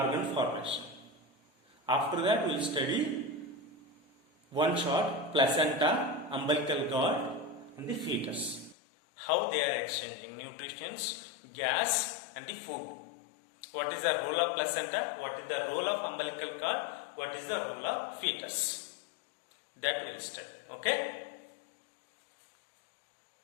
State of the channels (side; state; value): right; drops out; at 8.8 s